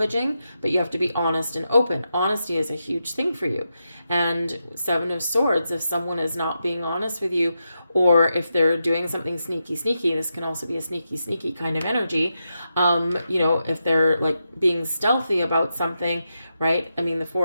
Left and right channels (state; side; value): inverted; both; correlation -0.87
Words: but you have to be honest and open. Honesty is a huge thing for you. And Seven of Swords, if someone is not being honest with you, or if they're doing something sneaky, this can also be a sneaky kind of energy. If they're like being stealthy about something, right? I mean, the